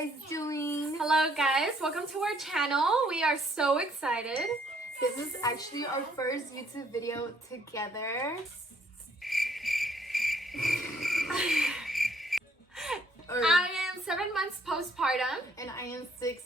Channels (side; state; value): both; normal; correlation 0.66